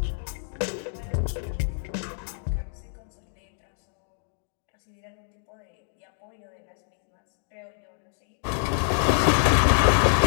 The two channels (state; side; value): silent; right; digital silence